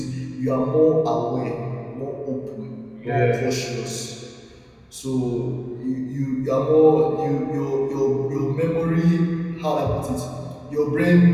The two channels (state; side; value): identical; both; correlation 1.00